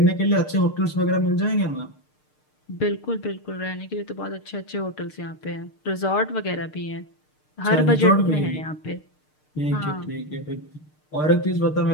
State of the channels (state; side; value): late; right; 6.6 ms